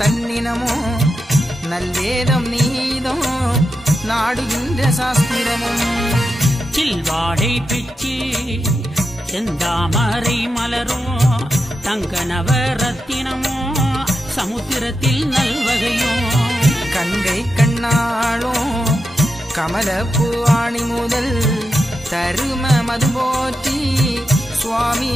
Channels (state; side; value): normal; both; correlation 0.88